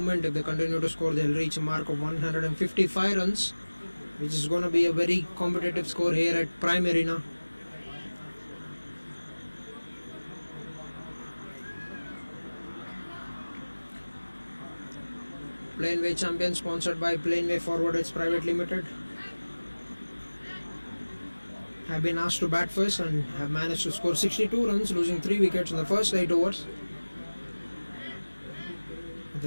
If they continue to score, they'll reach a mark of 155 runs, which is going to be a very competitive score here at Prime Arena. Planway champion, sponsored by Planway Forwarders Private Limited, have been asked to bat first and have managed to score 62 runs, losing 3 wickets in the first 8 overs.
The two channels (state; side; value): inverted; both; correlation -1.00